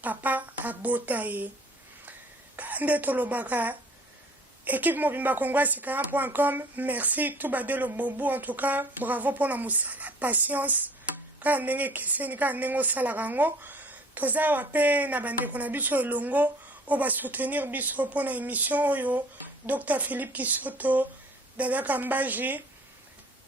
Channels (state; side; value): normal; both; correlation 0.50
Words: papa abota ye kande tolobaka équipe mobimba congoasikaram.com. Merci tout badelo bobu. En tout cas, bravo pour la musala patience kaka ndenge ekeseni kaka ndenge osalaka yango toza awa mpe na bandeko na biso elongo oyo basoutenir biso mpona émission oyo Dr Philippe Kisoto, Dada Kambaji,